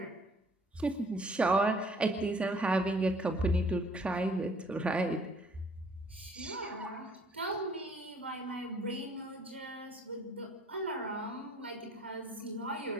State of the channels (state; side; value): normal; both; correlation 0.59